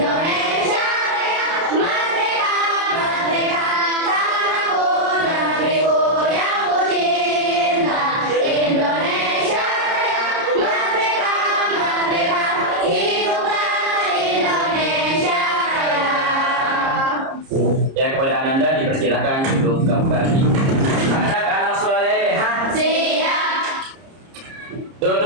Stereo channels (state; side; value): late; left; 30 ms